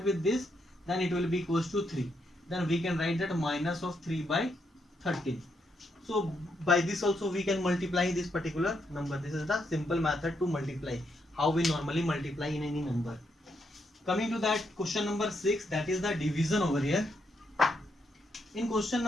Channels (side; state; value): both; normal; correlation 0.79